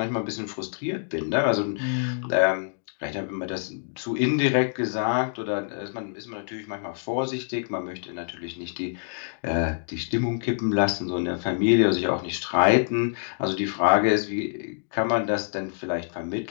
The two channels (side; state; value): right; silent; digital silence